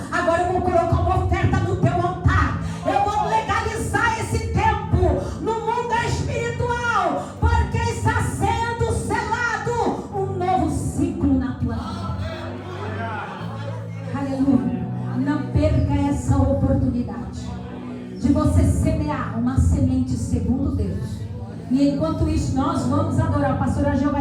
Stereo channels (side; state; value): both; identical; correlation 1.00